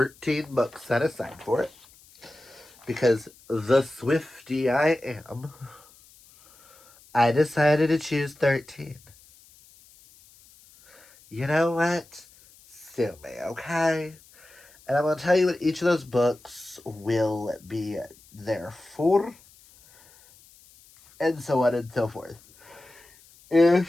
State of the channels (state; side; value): noise; left; hiss, 26 dB below the sound